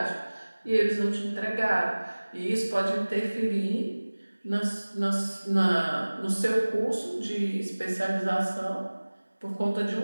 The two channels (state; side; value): inverted; both; correlation -1.00